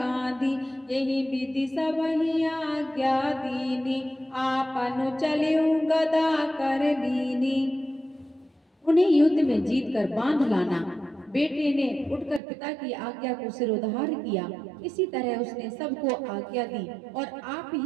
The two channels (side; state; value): left; drops out; at 12.4 s